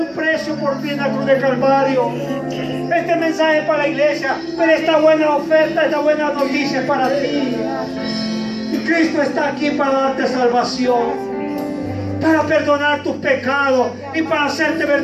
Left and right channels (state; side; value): identical; both; correlation 1.00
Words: precio por ti en la cruz de Calvario. Este mensaje es para la iglesia, pero esta buena oferta, esta buena noticia es para ti. Y Cristo está aquí para darte salvación, para perdonar tus pecados y para hacerte